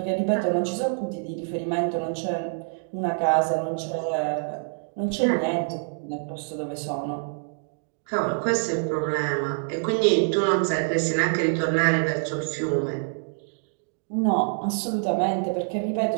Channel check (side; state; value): left; silent; digital silence